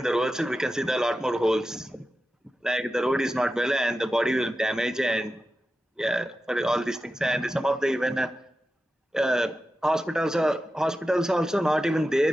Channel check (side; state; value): both; normal; correlation 0.92